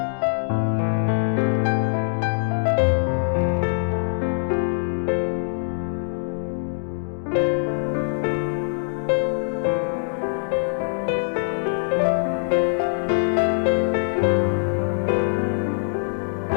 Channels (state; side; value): silent; right; digital silence